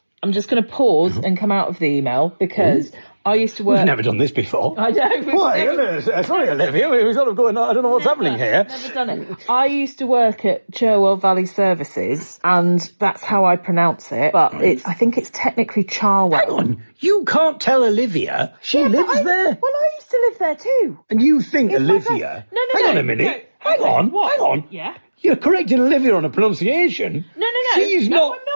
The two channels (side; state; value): both; inverted; correlation -1.00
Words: I'm just going to pause and come out of the email because I used to work... We've never done this before. I know. Sorry, Olivia, we're sort of going, I don't know what's happening here. Never done it. I used to work at Cherwell Valley Services, and that's how I pronounce it, but I think it's technically Charwell. Hang on, you can't tell Olivia. She lives there. Well, I used to live there too. And you think It's my Olivia... place. No, Hang on a minute. no. Hang on. What? Hang on. Yeah? You're correcting Olivia on a pronunciation. No. She's not...